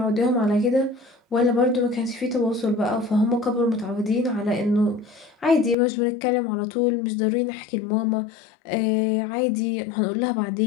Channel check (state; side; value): drops out; right; at 5.8 s